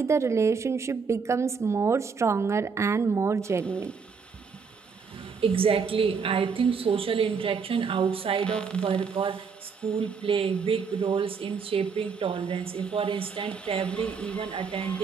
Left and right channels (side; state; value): left; quieter; 5.6 dB